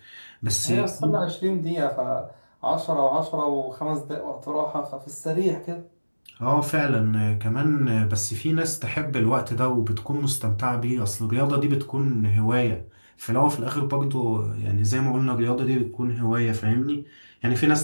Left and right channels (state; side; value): inverted; both; correlation -1.00